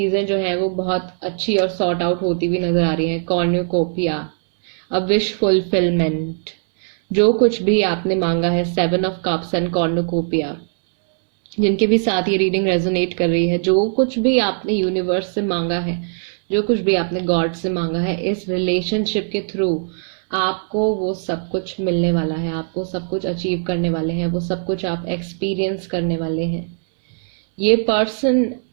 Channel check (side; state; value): left; silent; 66 dB below the other